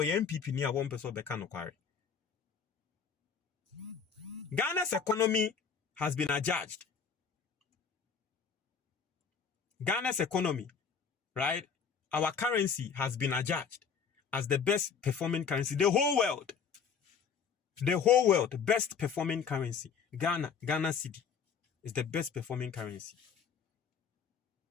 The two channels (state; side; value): quieter; right; 6.3 dB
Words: ye MPP ni a won peso be ka no kware Ghana's economy has been adjudged. Ghana's economy, right? Our currency has been adjudged as the best performing currency. The whole world, best performing currency. Ghana cedi is the best performing currency.